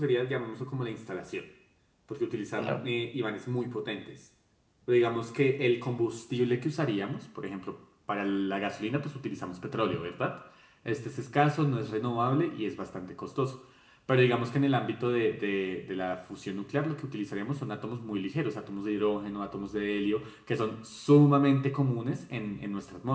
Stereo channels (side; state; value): both; identical; correlation 1.00